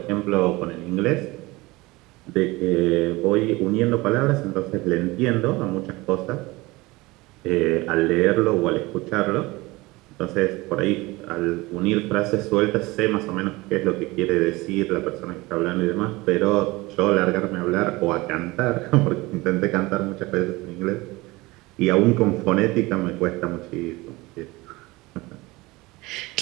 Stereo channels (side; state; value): left; quieter; 21.6 dB